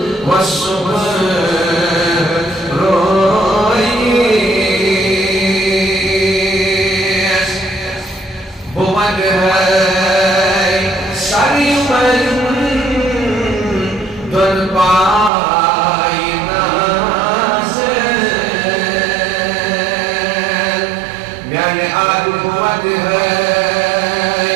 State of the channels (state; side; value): drops out; left; at 15.3 s